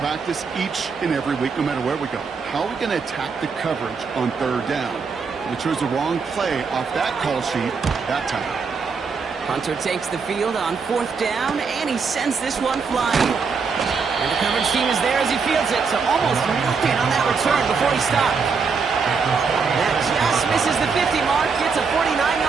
practice each and every week, no matter where we go. How are we going to attack the coverage on 3rd down? We chose the wrong play off that call sheet that time. Hunter takes the field on 4th down, and he sends this one flying. And the coverage team is there as he fields it, so almost nothing on that return before he stopped. That just misses the 50 mark, gets a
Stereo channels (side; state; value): left; quieter; 5.3 dB